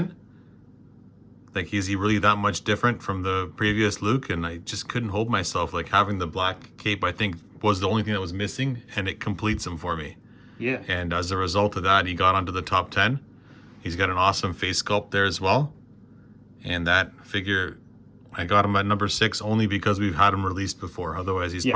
Like, is he really that much different from the previous Luke? And I just couldn't hold myself. Like, having the black cape, I think, was the only thing that was missing, and it completes him for me. Yeah. And as a result of that, he got onto the top 10. He's got an awesome face sculpt there as well. And that figure, I got him at number 6 only because we've had him released before. Otherwise, he's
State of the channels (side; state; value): both; identical; correlation 1.00